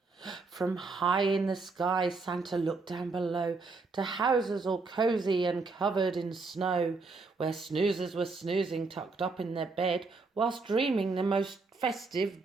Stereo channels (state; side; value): quieter; left; 4.0 dB